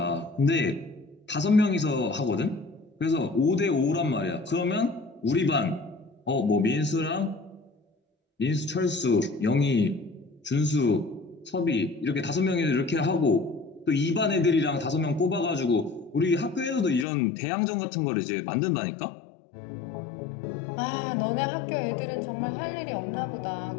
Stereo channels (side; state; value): right; drops out; at 17.1 s